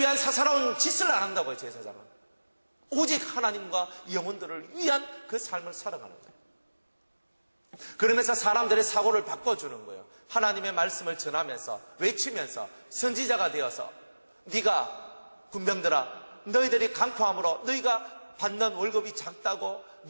사사로운 짓을 안 한다고요. 제사장은 오직 하나님과 영혼들을 위한 그 삶을 살아가는 거예요. 그러면서 사람들의 사고를 바꿔주는 거예요. 하나님의 말씀을 전하면서, 외치면서 선지자가 되어서, 네가 군병들아, 너희들이 강포함으로 너희가 받는 월급이 작다고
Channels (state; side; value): inverted; both; correlation -1.00